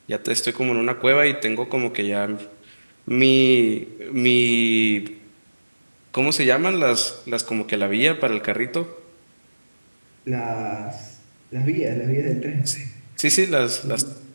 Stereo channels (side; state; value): both; inverted; correlation -1.00